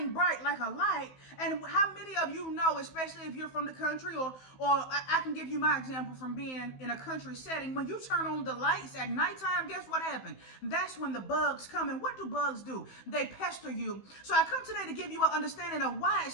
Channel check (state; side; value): late; right; 15 ms